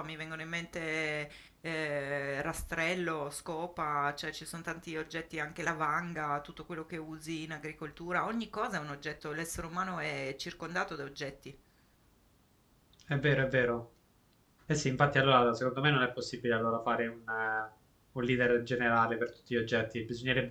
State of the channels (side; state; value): both; identical; correlation 1.00